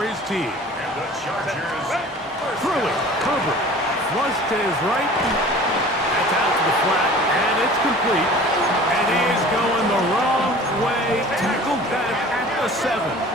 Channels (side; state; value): both; normal; correlation 0.44